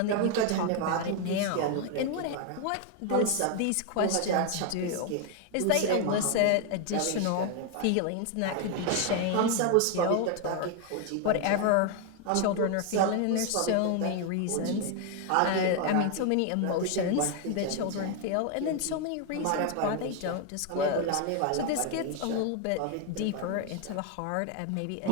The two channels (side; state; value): both; different; correlation 0.01